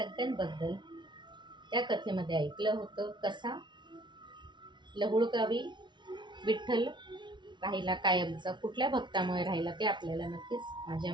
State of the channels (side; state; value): left; late; 0.22 ms